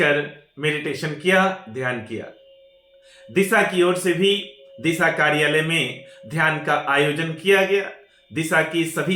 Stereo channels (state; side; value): identical; both; correlation 1.00